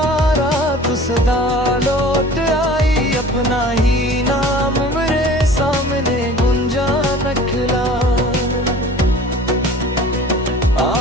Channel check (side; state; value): both; normal; correlation 0.44